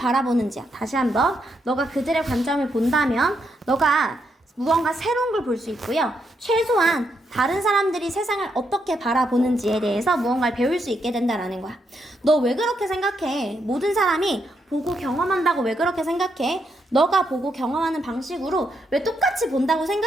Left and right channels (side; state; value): both; normal; correlation 0.79